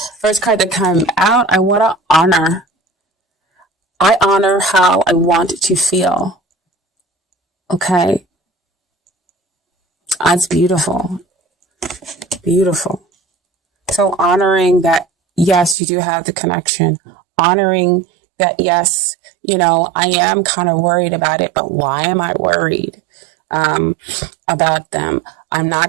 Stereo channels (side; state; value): left; drops out; at 15.8 s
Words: First card that came out, I want to honor. I honor how I want to feel. Okay. That's beautiful. Beautiful. So honoring that, yes, you do have the connection. Honoring that, yes, I am kind of worried about it, but why am I worried about them? I'm